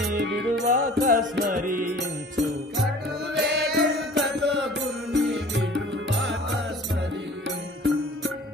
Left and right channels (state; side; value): normal; both; correlation 0.47